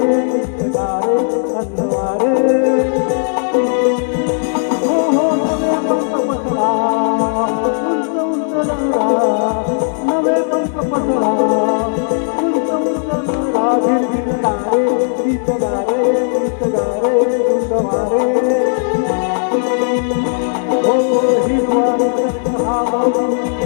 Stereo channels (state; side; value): silent; right; digital silence